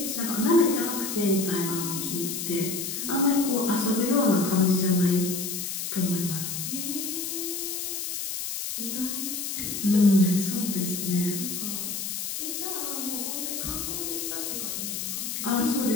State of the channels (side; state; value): left; noise; hiss, 4 dB below the sound